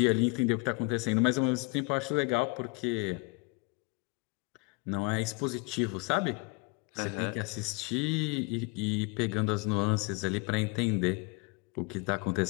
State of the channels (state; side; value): quieter; right; 28.9 dB